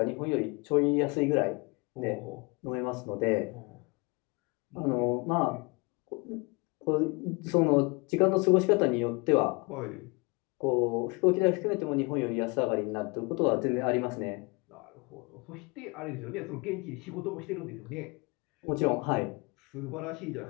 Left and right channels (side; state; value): right; quieter; 28.4 dB